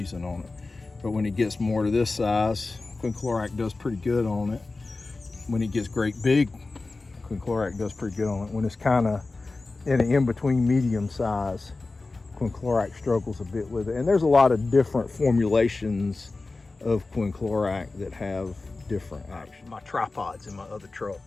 on it. But when it gets more to this size, quinclorac does pretty good on it. When it gets great big, quinclorac does pretty good on it. When it's kind of in an in-between medium size, quinclorac struggles a bit with it. And there's a lot of different formulations of quinclorac that have different action. My tripod's in my other truck,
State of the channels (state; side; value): quieter; right; 3.5 dB